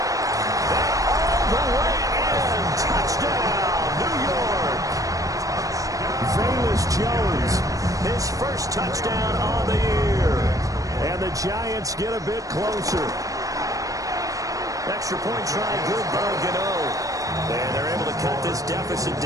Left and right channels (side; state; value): left; late; 0.16 ms